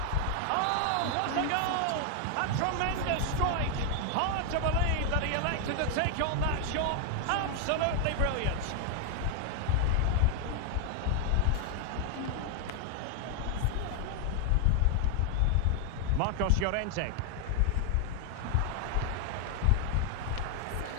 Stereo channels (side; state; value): both; different; correlation 0.00